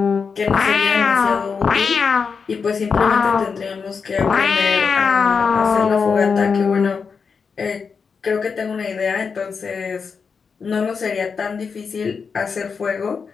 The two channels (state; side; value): quieter; right; 5.6 dB